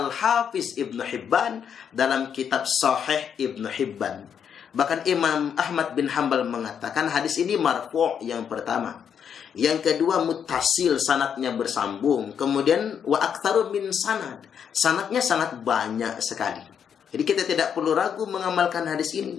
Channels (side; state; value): right; quieter; 7.9 dB